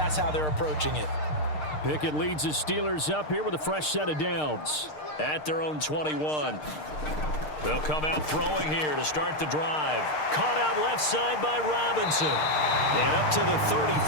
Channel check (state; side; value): late; right; 6.6 ms